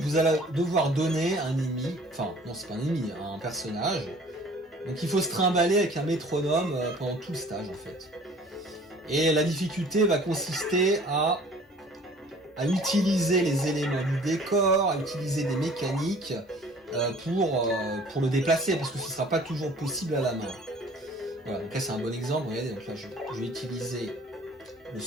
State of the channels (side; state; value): both; normal; correlation 0.50